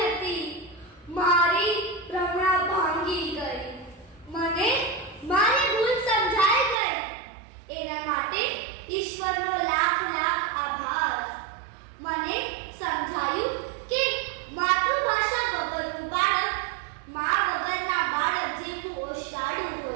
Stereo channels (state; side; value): drops out; left; at 6.8 s